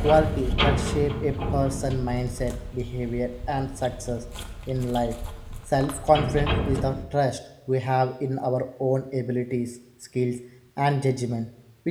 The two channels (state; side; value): identical; both; correlation 1.00